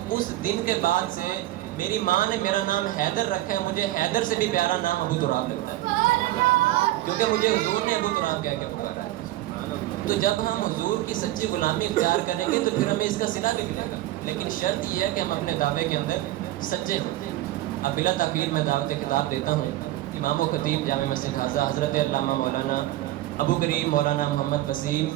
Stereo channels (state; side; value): quieter; left; 15.5 dB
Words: اس دن کے بعد سے میری ماں نے میرا نام حیدر رکھا ہے، مجھے حیدر سے بھی پیارا نام ابو تراب لگتا ہے، کیونکہ مجھے حضور نے ابو تراب کہہ کے پکارا ہے۔ تو جب ہم حضور کی سچی غلامی اختیار کریں گے تو پھر ہمیں اس کا صلہ بھی ملے گا، لیکن شرط یہ ہے کہ ہم اپنے دعوے کے اندر سچے ہوں۔ اب بلا تاخیر میں دعوت خطاب دیتا ہوں امام و خطیب جامع مسجد حاضہ حضرت علامہ مولانا ابو کریم مولانا محمد وسیم